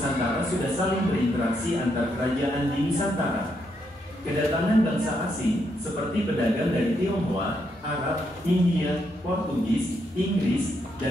sudah saling berinteraksi antar kerajaan di Nusantara. Kedatangan bangsa asing, seperti pedagang dari Tionghoa, Arab, India, Portugis, Inggris,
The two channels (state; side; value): normal; both; correlation 0.78